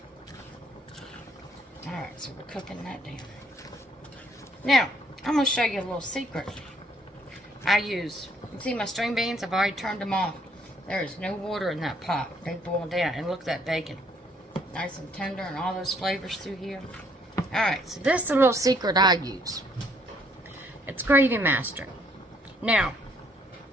Alright, so we're cooking that down. Now, I'm going to show you a little secret. I use, you see my string beans? I've already turned them off. There is no water in that pot. They boil down. And look at that bacon. Nice and tender and all those flavors through here. Alright, so this is a little secret I use. It's Gravy Master. Now,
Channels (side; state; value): both; normal; correlation 0.66